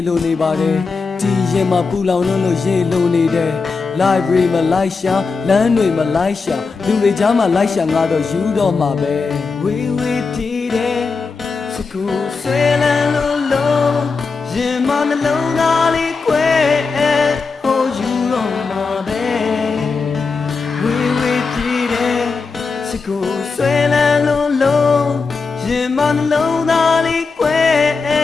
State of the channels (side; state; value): right; quieter; 4.6 dB